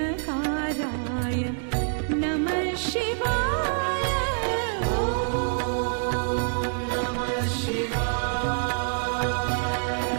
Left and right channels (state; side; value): silent; left; digital silence